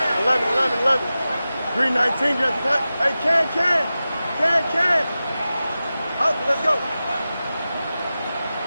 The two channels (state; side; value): inverted; both; correlation -0.94